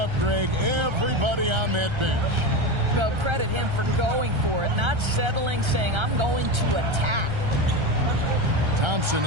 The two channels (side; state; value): left; late; 1.3 ms